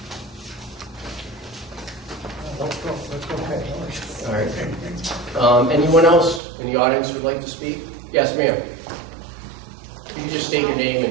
All right. Anyone else in the audience who would like to speak? Yes, ma'am. Can you just state your name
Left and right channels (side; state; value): left; drops out; at 6.4 s